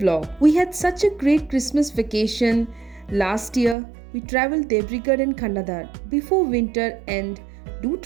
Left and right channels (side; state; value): left; drops out; at 3.8 s